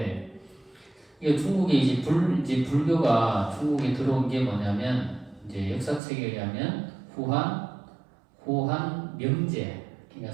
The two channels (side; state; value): left; drops out; at 6.0 s